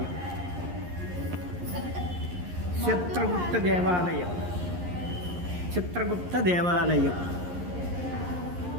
చిత్రగుప్త దేవాలయం, చిత్రగుప్త దేవాలయం,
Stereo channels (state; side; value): late; left; 11 ms